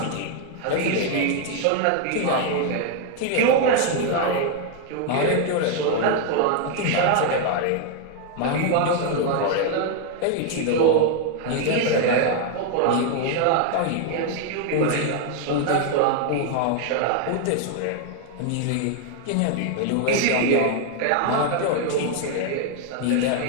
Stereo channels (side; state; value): both; different; correlation 0.01